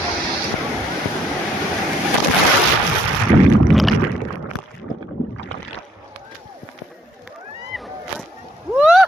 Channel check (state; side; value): normal; both; correlation 0.68